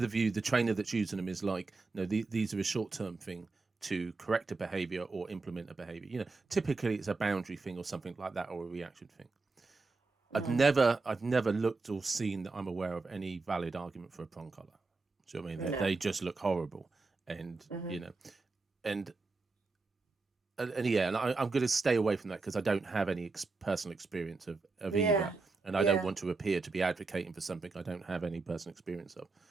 the view, the trainer that's using them is like, no, these are a short term thing to correct a behavior or implement a behavior. You know, typically it's a boundary thing or something like that, or a reaction thing. Mm. I've never looked or seen that I'm aware of any valid argument for a prong collar. Do you know what I mean? No. They just look horrible, and Mm-hmm. you know, and yeah, and I'm going to stay away from that because I don't have any personal experience of Yeah. either, and I don't Yeah. want to appear to be advocating for something I don't have any personal experience of.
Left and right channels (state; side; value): quieter; left; 3.8 dB